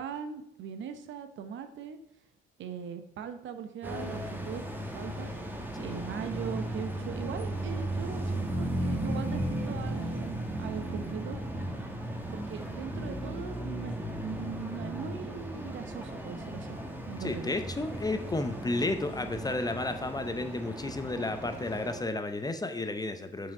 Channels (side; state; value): both; normal; correlation 0.65